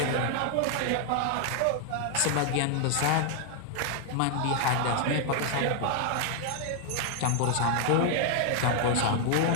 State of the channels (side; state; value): both; different; correlation 0.00